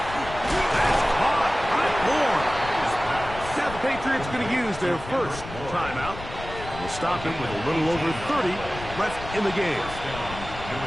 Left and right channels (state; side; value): noise; left; rumble, 12 dB below the sound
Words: That's caught by Bourne. Now the Patriots gonna use their first timeout. And we'll stop it with a little over 30 left in the game.